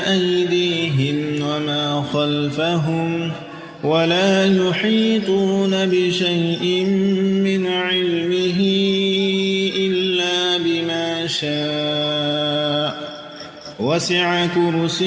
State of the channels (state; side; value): identical; both; correlation 1.00